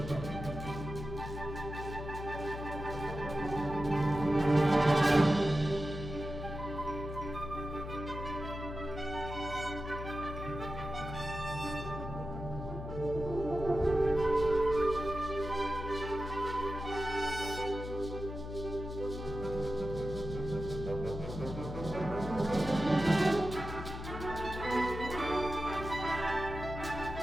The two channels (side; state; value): left; noise; hum, 8 dB below the sound